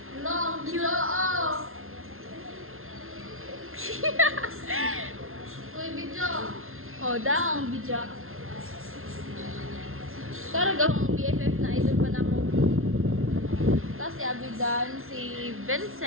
Long cute. Uy, video. Oh, daang bija. Karagahong BFF na idol pa na mo. Tapos si Abidan, si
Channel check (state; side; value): late; left; 0.61 ms